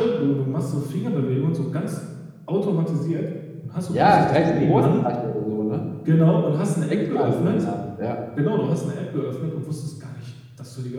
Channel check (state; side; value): identical; both; correlation 1.00